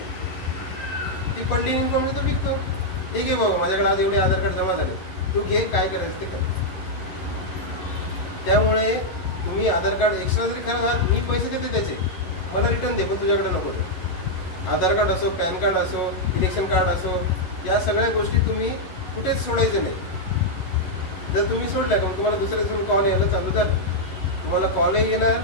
ती पडलेली इन्फॉर्मेशन तो विकतो. ठीक आहे बाबा, माझ्याकडे आज एवढे आधार कार्ड जमा झाले, तू घे, काय करायचं ते कर. त्यामुळे तुम्ही आधार कार्ड एक्स्ट्रा जरी खराब, मी पैसे देते त्याचे, मला रिटर्न दे, पण तुझ्याकडे नको ते. आधार कार्ड असो, पॅन कार्ड असो, इलेक्शन कार्ड असो, या सगळ्या गोष्टी तुम्ही कुठेच सोडायचे नाही. जर तुम्ही सोडल्या का तुम्हाला दुसऱ्या दिवशी कॉल यायला चालू झाले, तुम्हाला कॉलही येणार,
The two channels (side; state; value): right; late; 11 ms